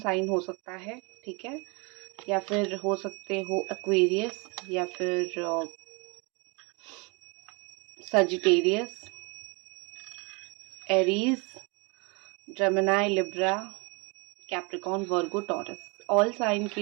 हो सकता है, ठीक है, या फिर हो सकते हो एक्वेरियस, या फिर Sagittarius, Aries, Gemini, Libra, Capricorn, Virgo, Taurus. All sign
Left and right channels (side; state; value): left; quieter; 30.3 dB